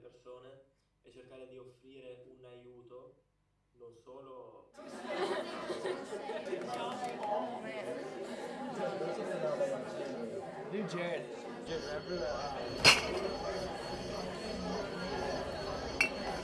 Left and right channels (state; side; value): identical; both; correlation 1.00